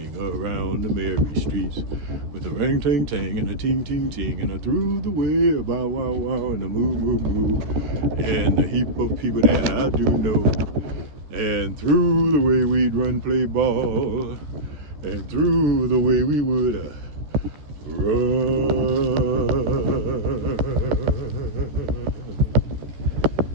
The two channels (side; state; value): left; late; 13 ms